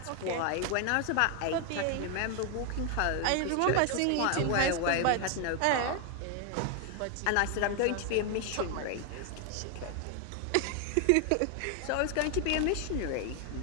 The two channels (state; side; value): different; both; correlation 0.01